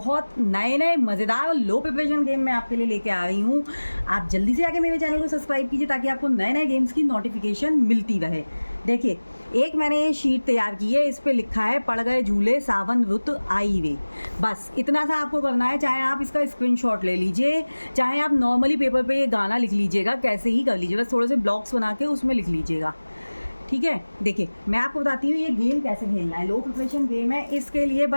नए नए मज़ेदार और लो प्रिपरेशन गेम मैं आपके लिए लेके आ रही हूँ। आप जल्दी से आके मेरे चैनल को सब्सक्राइब कीजिए ताकि आपको नए नए गेम्स की नोटिफिकेशन मिलती रहे। देखिए, एक मैंने ये शीट तैयार की है, इस पर लिखा है पड़ गए झूले सावन रुत आई वे। बस इतना सा आपको करना है। चाहे आप इसका स्क्रीनशॉट ले लीजिए, चाहे आप नॉर्मली पेपर पे ये गाना लिख लीजिएगा, कैसे ही कर लीजिए, बस थोड़े से ब्लॉक्स बना के उसमें लिख लीजिएगा। ठीक है, देखिए मैं आपको बताती हूँ ये गेम कैसे खेलना है। लो प्रिपरेशन गेम है। इसके लिए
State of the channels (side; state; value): both; inverted; correlation -1.00